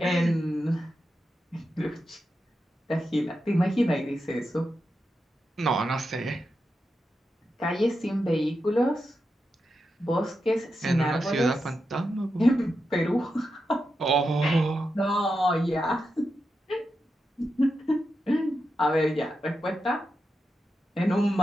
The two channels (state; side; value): normal; both; correlation 0.88